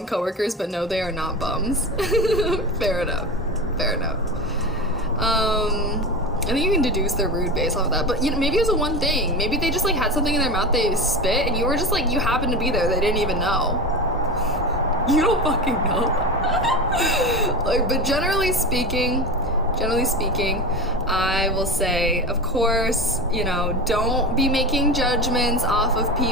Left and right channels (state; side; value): normal; both; correlation 0.25